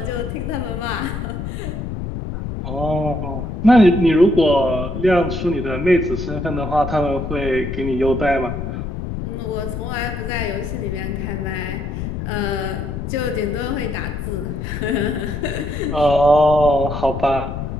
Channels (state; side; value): noise; left; rumble, 5 dB below the sound